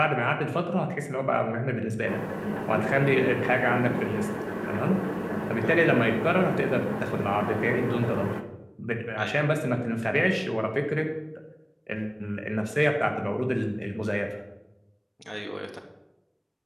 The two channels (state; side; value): identical; both; correlation 1.00